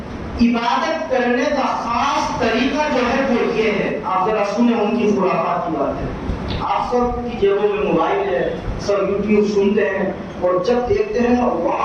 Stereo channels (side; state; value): both; identical; correlation 1.00